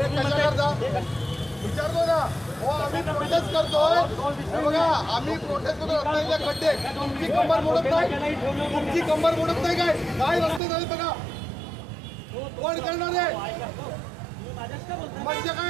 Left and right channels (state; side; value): drops out; left; at 10.6 s